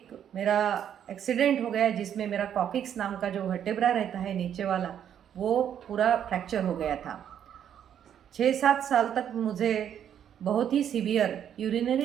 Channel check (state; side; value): quieter; left; 9.4 dB